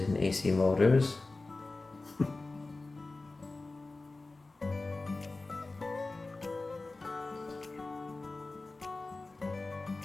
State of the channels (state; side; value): quieter; right; 3.3 dB